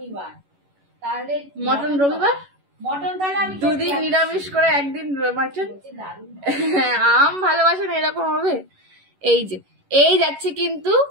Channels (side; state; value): left; late; 11 ms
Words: তাহলে মটন রবিবার, মটন তাহলে আমি দুদিন নিরামিষ করে একদিন মাটন। আম ভালোবাসে না এরকম হবে? এই যে এই যাচ্ছে কিন্তু,